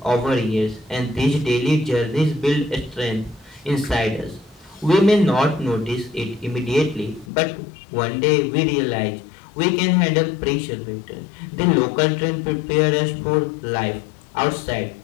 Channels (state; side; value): drops out; right; at 7.3 s